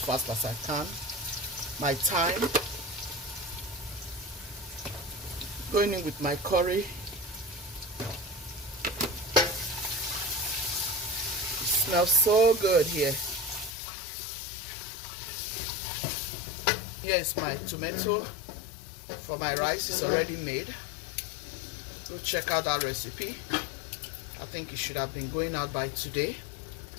fast as I can. My thyme. Going in with my curry. It smells so good here. Here's my tomato for my rice. It's already made. Go check out that recipe. I think it should have been going out by today.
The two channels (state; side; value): drops out; right; at 13.8 s